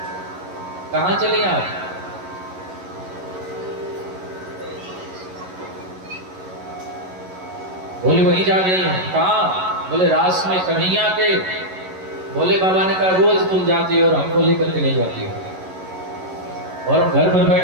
कहाँ चली आप? बोले वहीं जा रही हैं। कहाँ? बोले रास में कन्हैया के। भोले बाबा ने कहा, रोज तुम जाती हो और हमको लेकर के नहीं जाती हो, और हम घर पर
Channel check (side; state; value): left; late; 11 ms